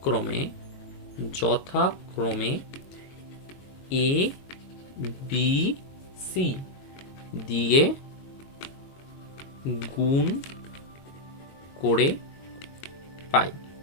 এ বি সি দিয়ে গুণ করে পাই।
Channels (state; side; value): late; right; 22 ms